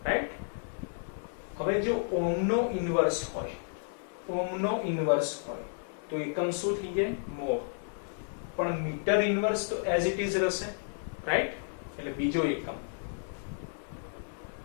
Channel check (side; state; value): right; silent; 56 dB below the other